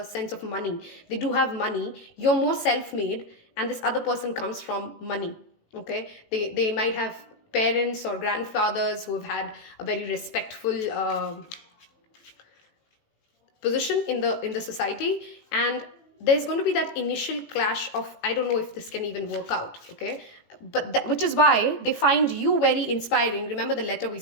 sense of money. They do have money. You're more self-made, and this other person comes from money. Okay, they might have parents or grandfathers who have had a very respectful position in the society, and there's going to be that initial clash of, I don't know if this can even work out, okay? But which is why they find you very inspiring. Remember the letter we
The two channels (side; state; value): right; late; 18 ms